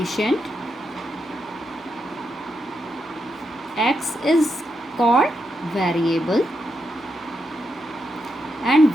x is called variable and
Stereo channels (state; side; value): normal; both; correlation 0.83